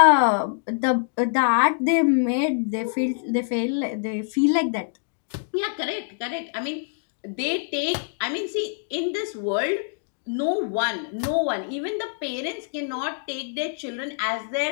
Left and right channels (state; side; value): silent; right; digital silence